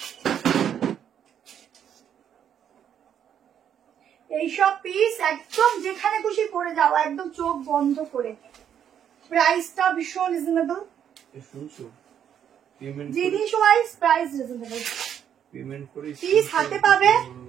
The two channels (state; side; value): quieter; left; 9.1 dB